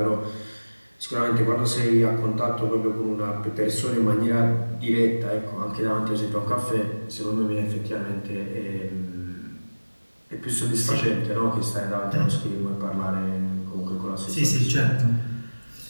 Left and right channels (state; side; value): inverted; both; correlation -1.00